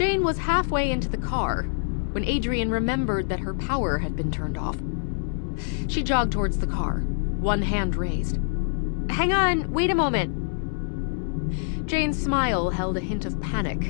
was halfway into the car when Adrian remembered that her power had been turned off. She jogged towards the car, one hand raised. "Hang on, wait a moment." Jane's smile held a hint of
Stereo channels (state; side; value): silent; right; digital silence